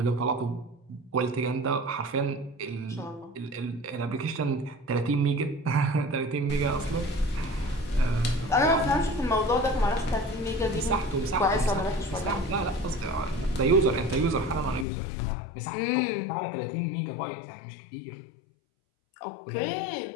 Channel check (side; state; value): right; drops out; at 14.9 s